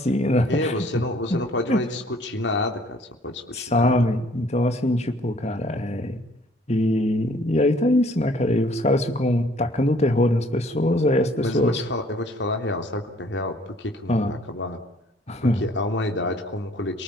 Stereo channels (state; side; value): normal; both; correlation 0.59